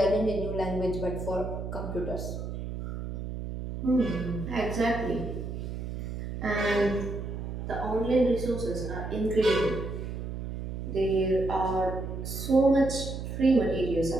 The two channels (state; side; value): noise; right; hum, 6 dB below the sound